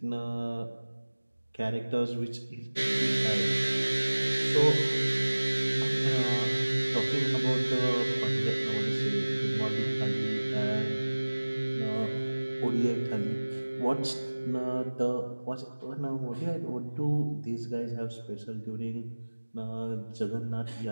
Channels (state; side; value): inverted; both; correlation -1.00